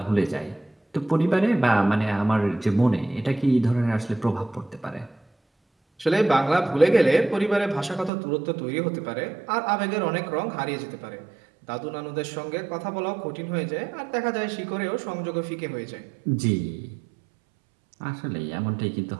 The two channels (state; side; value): drops out; left; at 8.1 s